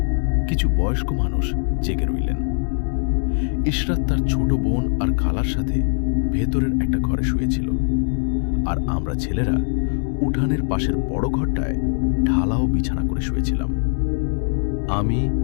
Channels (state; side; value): silent; right; digital silence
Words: কিছু বয়স্ক মানুষ জেগে রইলেন। ইশরাত তার ছোট বোন আর খালার সাথে ভেতরের একটা ঘরে শুয়েছিল, আর আমরা ছেলেরা উঠানের পাশের বড় ঘরটায় ঢালাও বিছানা করে শুয়েছিলাম। আমি,